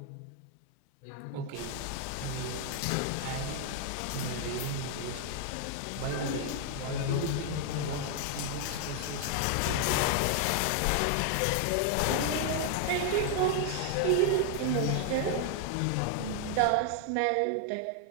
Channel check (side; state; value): both; different; correlation 0.00